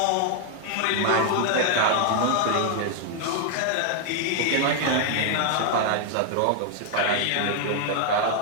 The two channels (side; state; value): both; different; correlation 0.00